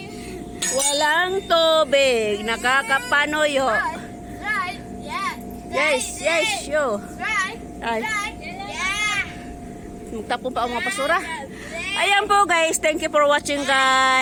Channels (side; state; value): both; identical; correlation 1.00